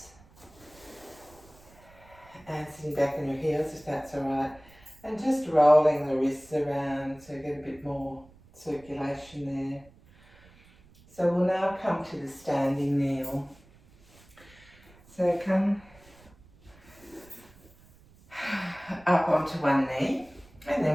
And sitting back on your heels if that's alright. And just rolling the wrists around so you get a bit more circulation there. So we'll now come to the standing kneel. So come up onto one knee and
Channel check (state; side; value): noise; right; rumble, 26 dB below the sound